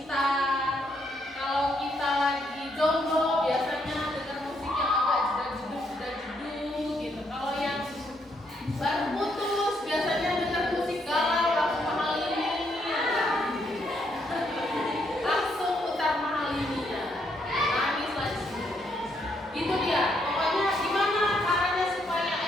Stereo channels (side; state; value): both; normal; correlation 0.74